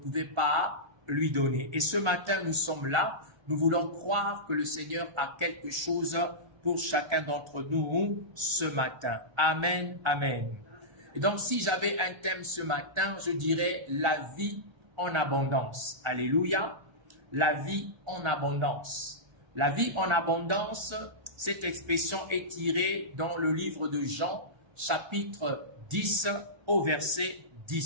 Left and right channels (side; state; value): left; late; 1.3 ms